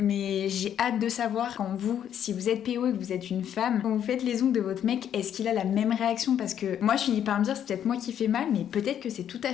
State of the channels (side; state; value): right; quieter; 9.7 dB